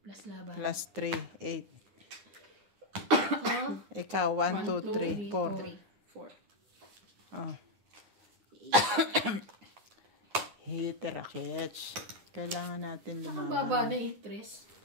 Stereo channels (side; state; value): left; late; 9.5 ms